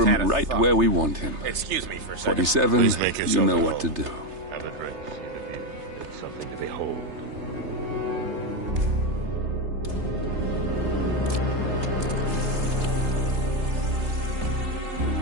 Ingram a right thought. where we want him. Excuse me for a second. 47, Please make you yourself know at what to home. do. Have a drink. See the view. It's something to behold.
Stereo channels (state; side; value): late; left; 3.3 ms